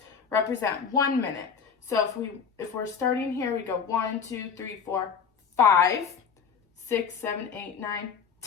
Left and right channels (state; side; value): quieter; right; 6.4 dB